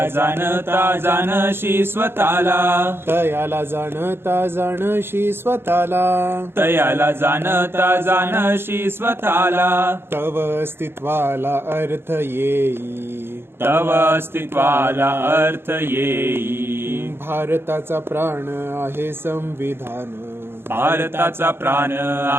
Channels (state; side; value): late; left; 0.11 ms